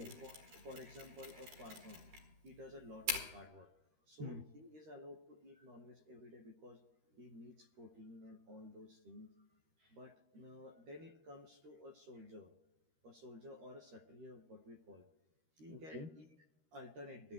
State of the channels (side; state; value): left; late; 13 ms